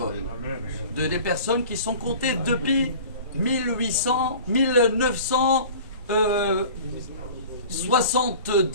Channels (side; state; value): both; inverted; correlation -0.41